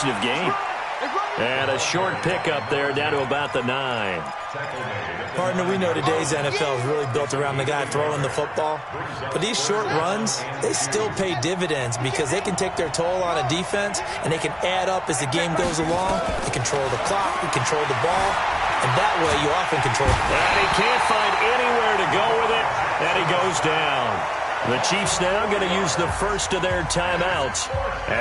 gain. And a short pickup there down to about the 9. Partner, we know today's NFL is really built around the guy throwing the football. But these short runs, they still pay dividends because they can take their toll on a defense and they can add up as the game goes along. They control the clock, they control the ball, and that way you often control it. And he can't find anywhere to go with it, and he goes down. The Chiefs now going to use the first of their timeouts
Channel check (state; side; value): identical; both; correlation 1.00